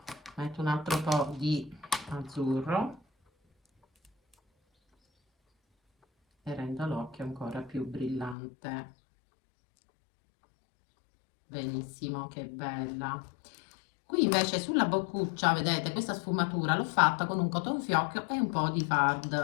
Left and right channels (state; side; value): drops out; right; at 8.3 s